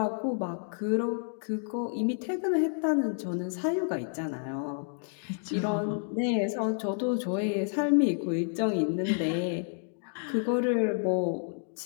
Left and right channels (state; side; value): silent; right; 58 dB below the other